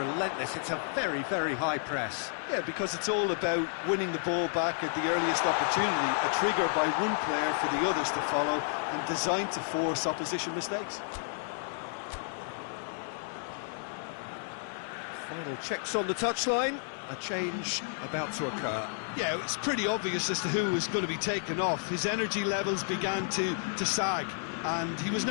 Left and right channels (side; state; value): right; silent; digital silence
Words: It's a very, very high press. Yeah, because it's all about winning the ball back at the earliest opportunity, a trigger by one player for the others to follow and designed to force opposition mistakes. Final checks on the touchline. A change about to occur. Yeah, it's pretty obvious as to who was going to be taken off. His energy levels began to sag, and he was